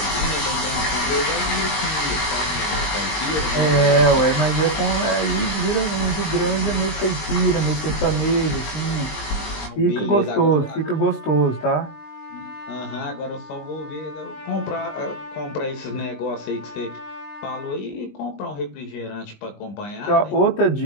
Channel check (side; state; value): right; late; 20 ms